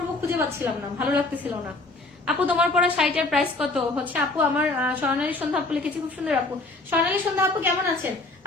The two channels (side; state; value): right; quieter; 3.1 dB